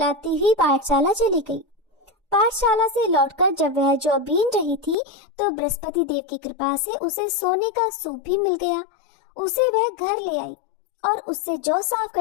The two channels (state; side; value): drops out; right; at 5.0 s